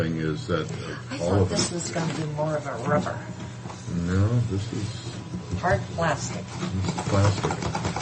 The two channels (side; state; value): both; identical; correlation 1.00